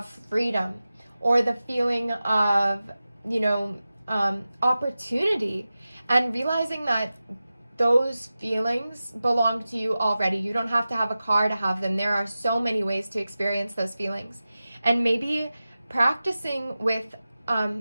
freedom, or the feeling of, opportunity, and realizing that those feelings belong to you already. You don't have to have a car to have them. There are so many ways to experience those feelings. And maybe practicing with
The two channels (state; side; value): inverted; both; correlation -0.95